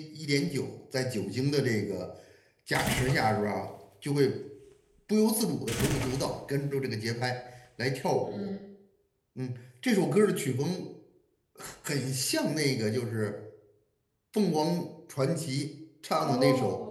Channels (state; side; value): identical; both; correlation 1.00